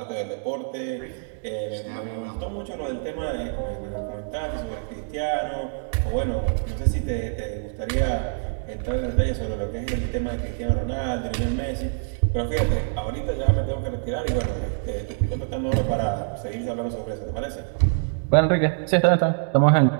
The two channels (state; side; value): silent; left; digital silence